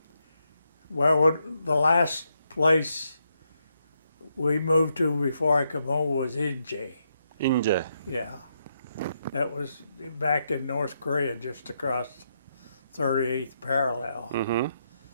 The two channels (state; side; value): inverted; both; correlation -0.80